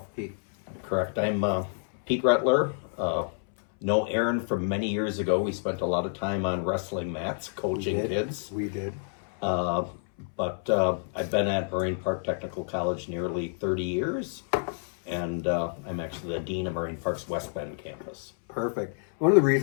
Pete. Correct. I'm Pete Rattler. Know Aaron from many years ago. We spent a lot of time on wrestling mats, coaching kids. We did. But I've been at Marine Park Technical College nearly 30 years, and I'm actually the Dean of Marine Park's West Bend campus. Perfect. One of the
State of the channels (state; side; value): silent; right; 59 dB below the other